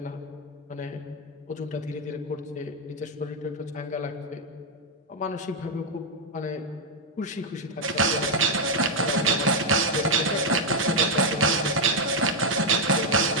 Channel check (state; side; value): normal; both; correlation 0.01